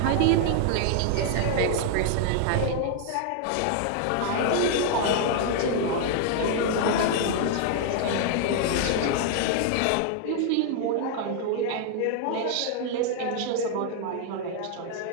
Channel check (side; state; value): both; different; correlation 0.00